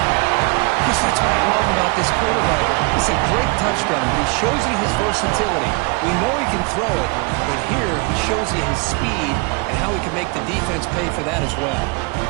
Chris, that's what I love about this quarterback. It's a great touchdown, but he shows you his versatility. We know he can throw it, but here he shows you his speed and how he can make the defense pay for that as well.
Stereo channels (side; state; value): left; quieter; 29.6 dB